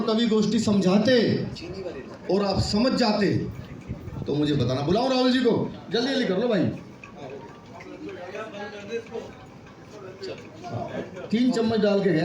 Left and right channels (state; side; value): identical; both; correlation 1.00